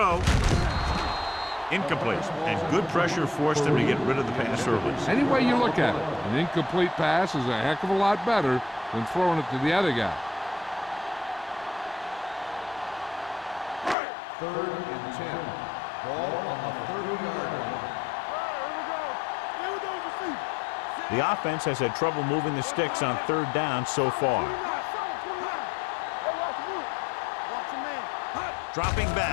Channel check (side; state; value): right; drops out; at 14.0 s